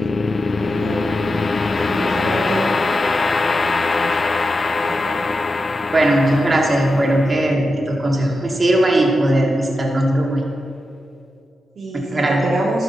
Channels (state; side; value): normal; both; correlation 0.89